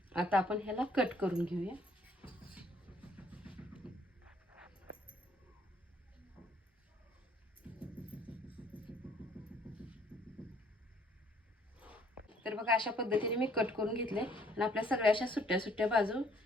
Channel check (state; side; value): normal; both; correlation 0.62